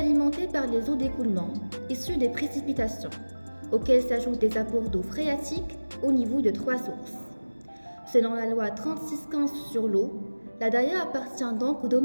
par les eaux d'écoulement issues des précipitations, auxquelles s'ajoutent des apports d'eau phréatique au niveau de 3 sources. Selon la loi 3615 sur l'eau, la Daya appartient donc au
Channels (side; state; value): both; inverted; correlation -1.00